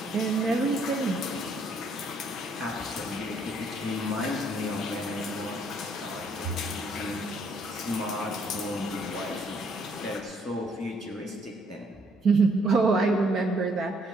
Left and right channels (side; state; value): both; normal; correlation 0.67